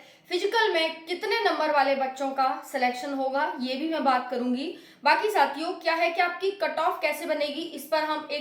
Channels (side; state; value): both; identical; correlation 1.00